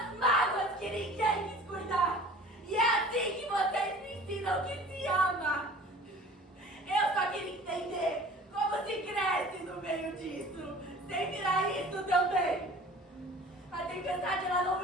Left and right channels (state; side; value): normal; both; correlation 0.45